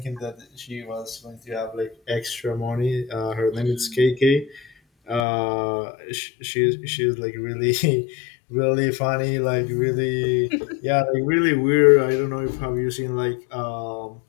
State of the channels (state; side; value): drops out; right; at 5.2 s